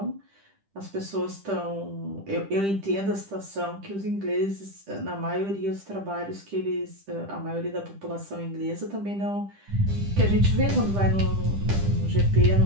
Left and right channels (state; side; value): late; left; 10 ms